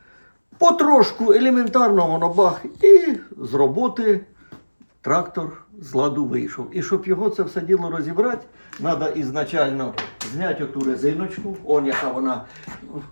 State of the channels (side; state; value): both; inverted; correlation -1.00